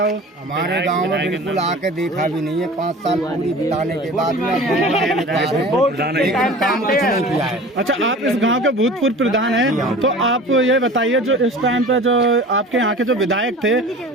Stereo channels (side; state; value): both; normal; correlation 0.40